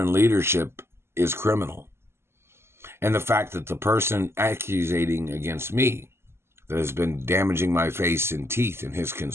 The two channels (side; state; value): left; late; 0.12 ms